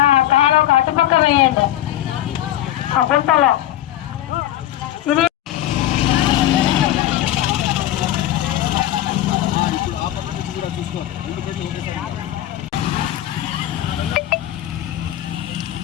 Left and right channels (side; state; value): right; quieter; 13.2 dB